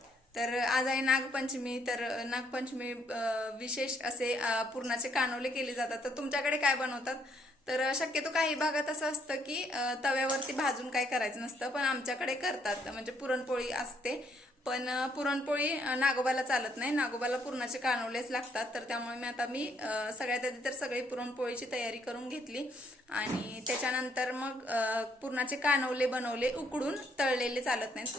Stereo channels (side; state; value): both; normal; correlation 0.70